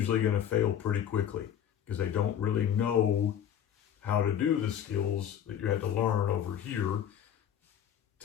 going to fail pretty quickly because they don't really know how to do the skills that you had to learn over here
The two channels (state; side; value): quieter; right; 9.5 dB